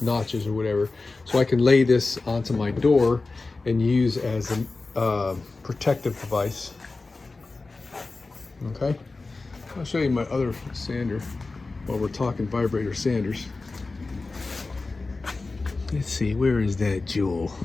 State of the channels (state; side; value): quieter; right; 3.6 dB